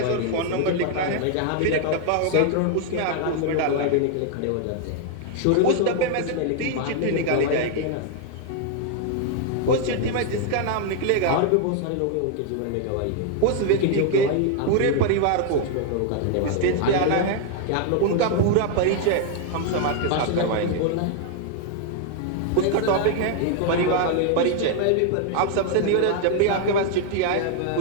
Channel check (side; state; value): both; different; correlation 0.00